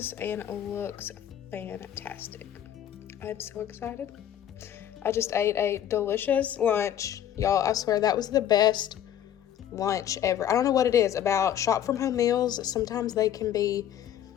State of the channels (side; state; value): right; quieter; 10.6 dB